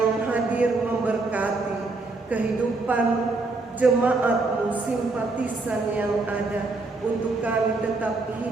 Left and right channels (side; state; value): left; quieter; 3.5 dB